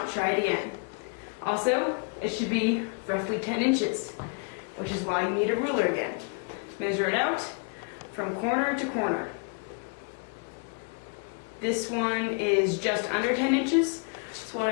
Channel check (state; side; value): quieter; right; 37.2 dB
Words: try it again. Also, it should be roughly 10 inches, which is why you need a ruler again. Measure it out from corner to corner. This one is just under 10 inches. So what